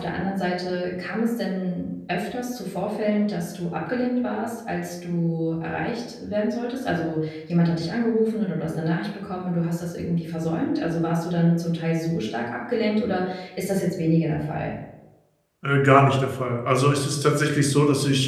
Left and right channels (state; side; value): identical; both; correlation 1.00